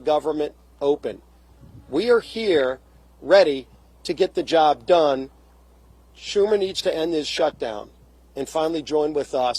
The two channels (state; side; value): identical; both; correlation 1.00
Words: open. We are here ready to get the job done. Schumer needs to end his shutdown and finally join with